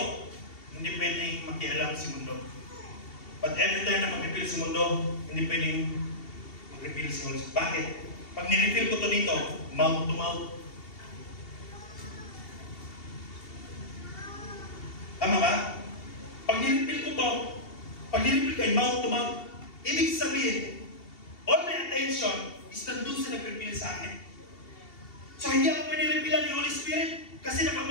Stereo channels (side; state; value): right; late; 2.7 ms